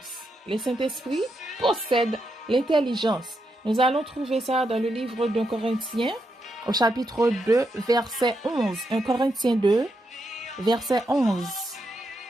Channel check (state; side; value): normal; both; correlation 0.82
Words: Le Saint-Esprit possède l'intelligence. Nous allons trouver ça dans le livre d'un Corinthien, au chapitre 2, verset 11. 1 Corinthiens 2, verset 11.